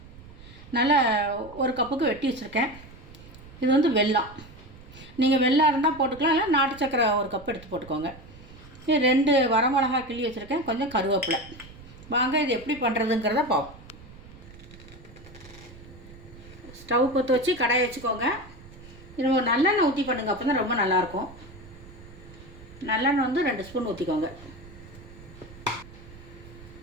நல்லா ஒரு கப்புக்கு வெட்டி வச்சுருக்கேன். இது வந்து வெல்லம். நீங்கள் வெல்லம் இருந்தால் போட்டுக்கலாம், இல்லை நாட்டு சக்கரை ஒரு கப் எடுத்து போட்டுக்கோங்க. இது 2 வரமிளகாய் கிள்ளி வச்சுருக்கேன், கொஞ்சம் கருவேப்பிலை. வாங்க இது எப்படி பண்ணுறதுங்கிறத பார்ப்போம். ஸ்டவ் பற்ற வச்சு கடாயை வச்சுக்கோங்க. இது ஒரு நல்லெண்ணெய் ஊற்றி பண்ணுங்கள், அப்போ தான் ரொம்ப நல்லாயிருக்கும். நல்லெண்ணெய் வந்து 2 ஸ்பூன் ஊற்றிக்கோங்க.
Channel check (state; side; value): noise; right; rumble, 19 dB below the sound